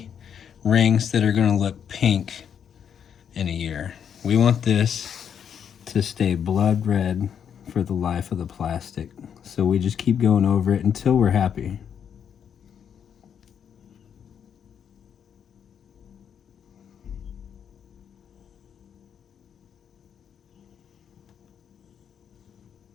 rings that are going to look pink in a year. We want this to stay blood red for the life of the plastic. So we just keep going over it until we're happy.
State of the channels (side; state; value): right; quieter; 8.1 dB